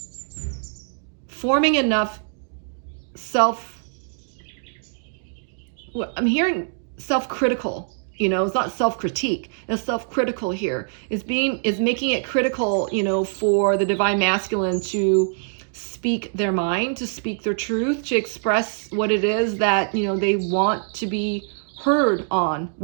enough I'm hearing self-critical, it's not self-critique, it's self-critical here. It's making it critical, for the divine masculine to speak their mind, to speak their truth, to express what it is that, they want to be heard on,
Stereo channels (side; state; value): left; silent; digital silence